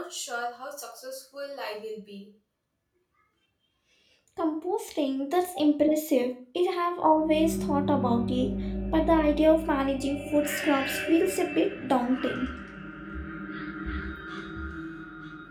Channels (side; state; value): both; identical; correlation 1.00